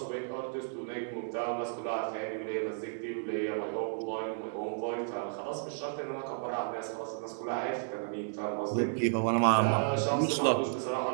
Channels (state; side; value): silent; left; digital silence